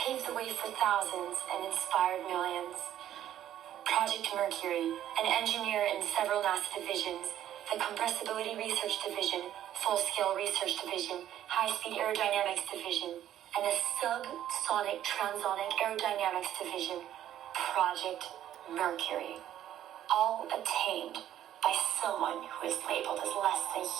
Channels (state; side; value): quieter; left; 11.6 dB